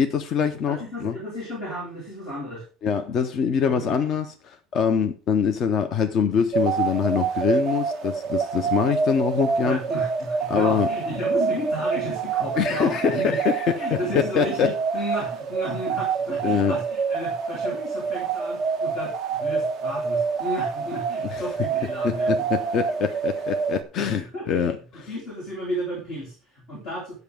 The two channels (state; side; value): normal; both; correlation 0.48